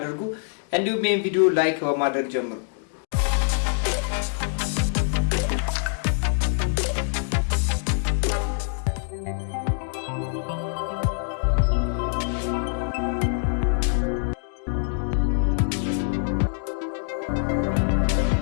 እንዲሁም ይህን ቪዲዮ ላይክ በማድረግ ጀምሩ።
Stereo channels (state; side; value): silent; right; digital silence